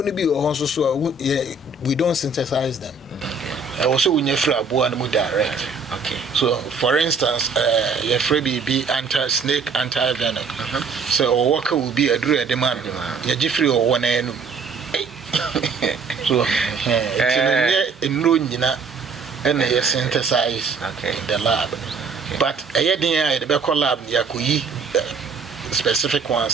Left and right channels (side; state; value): left; quieter; 4.5 dB